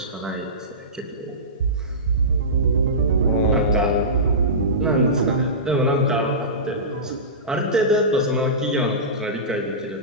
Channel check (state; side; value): normal; both; correlation -0.20